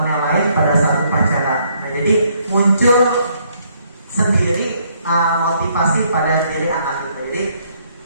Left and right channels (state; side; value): inverted; both; correlation -0.69